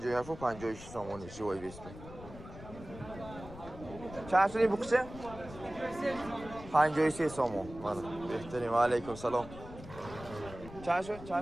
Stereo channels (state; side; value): noise; left; rumble, 14 dB below the sound